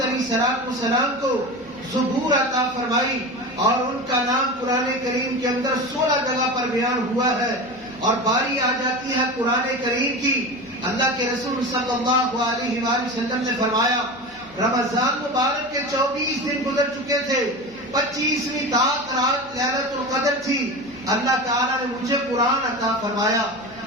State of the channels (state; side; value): noise; right; hum, 29 dB below the sound